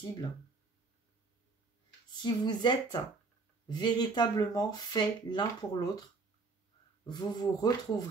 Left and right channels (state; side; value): quieter; left; 4.0 dB